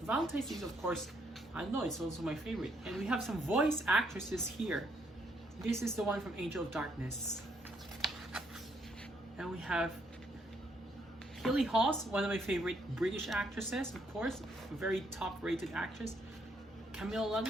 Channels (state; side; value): normal; both; correlation 0.72